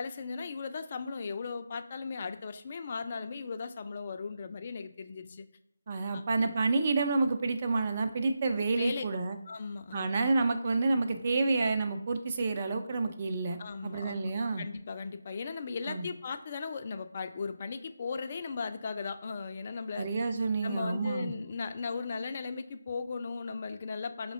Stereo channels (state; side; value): inverted; both; correlation -0.86